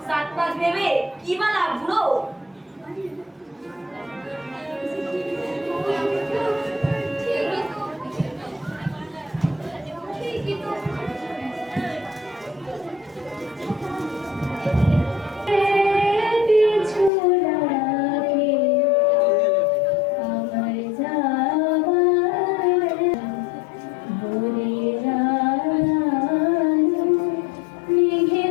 সাত পাঁচ ভেবে কি বা লাভ বুড়ো? ঠিকই তো।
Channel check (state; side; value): drops out; right; at 17.1 s